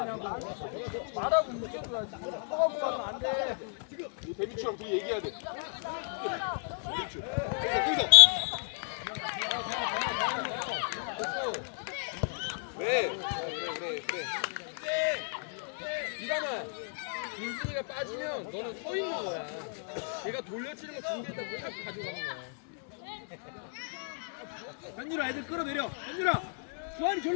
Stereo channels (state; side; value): silent; right; 56 dB below the other